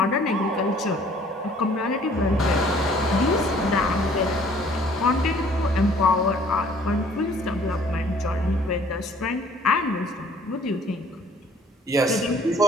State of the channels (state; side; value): normal; both; correlation 0.57